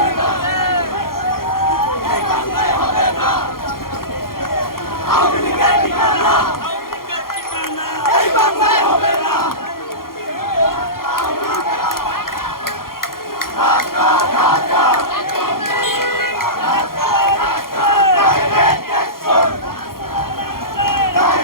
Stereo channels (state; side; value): late; right; 0.92 ms